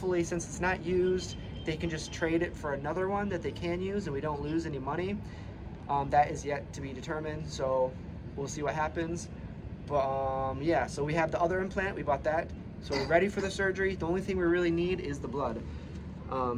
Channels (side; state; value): both; identical; correlation 1.00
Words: since it's not used, they can just trade it for another one that they can use and we don't lose any money. That is yet to be determined, so we'll see what happens. But yeah, so we have the other implant, we bought that. So we're ready for the surgery. The only thing we really need is the blood.